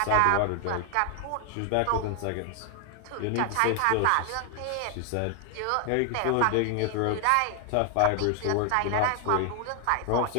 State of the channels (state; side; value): different; both; correlation 0.00